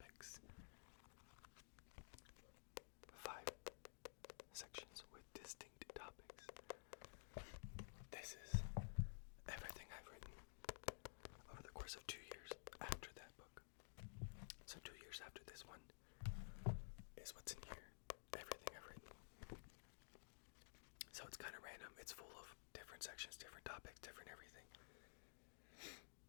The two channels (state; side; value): silent; right; digital silence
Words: 5 sections with distinct topics. This is everything I've written over the course of 2 years after that book. So 2 years after this one is what's in here. Everything I've written. So it's kind of random. It's full of different sections, different topics, different everything.